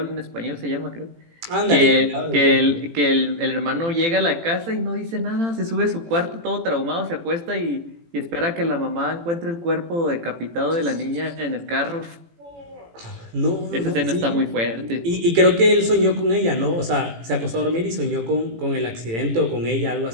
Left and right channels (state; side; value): late; left; 18 ms